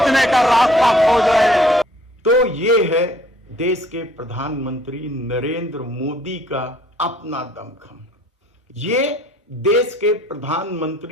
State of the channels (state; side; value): normal; both; correlation 0.58